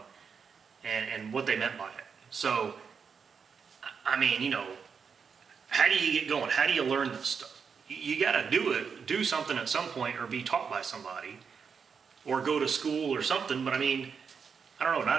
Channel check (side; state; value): left; quieter; 6.1 dB